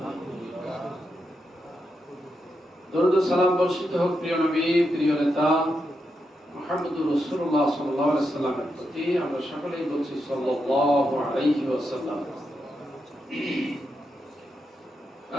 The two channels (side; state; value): both; normal; correlation 0.85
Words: দরুদ ও সালাম বর্ষিত হোক প্রিয় নবী, প্রিয় নেতা মুহাম্মদুর রাসূলুল্লাহ সাল্লাল্লাহু আলাইহি ওয়াসাল্লামের প্রতি। আমরা সকলেই বলছি সাল্লাল্লাহু আলাইহি ওয়াসাল্লাম।